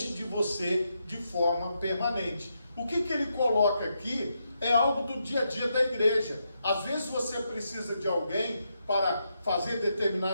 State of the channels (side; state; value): both; inverted; correlation -0.82